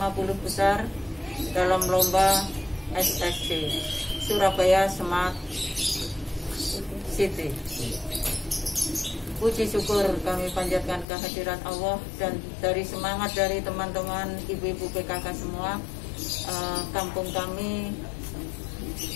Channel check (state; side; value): drops out; right; at 11.1 s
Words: besar dalam lomba SSC Surabaya Smart City. Puji syukur kami panjatkan kehadirat Allah dan dari semangat dari teman-teman ibu-ibu PKK semua, kampung kami